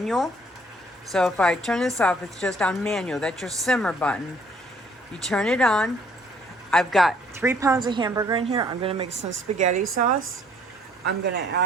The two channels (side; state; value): both; normal; correlation 0.61